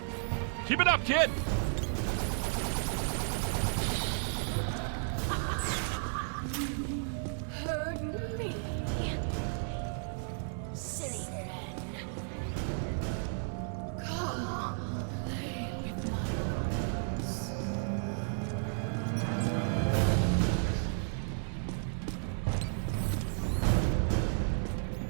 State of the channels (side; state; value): left; silent; digital silence